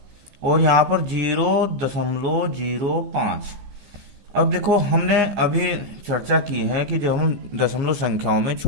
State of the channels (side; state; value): left; late; 15 ms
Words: और यहाँ पर 0.05। अब देखो हमने अभी चर्चा की है कि जब हम दशमलव संख्याओं में